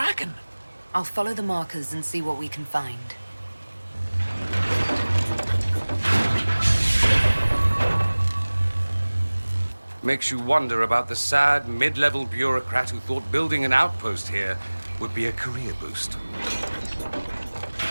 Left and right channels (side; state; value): both; inverted; correlation -1.00